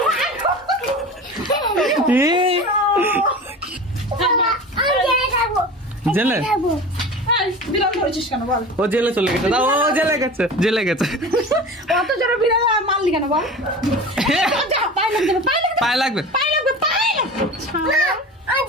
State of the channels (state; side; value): normal; both; correlation 0.34